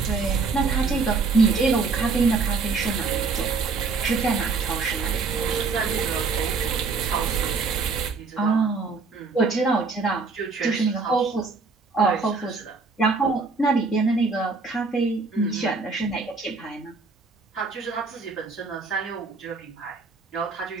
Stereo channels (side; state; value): left; quieter; 4.4 dB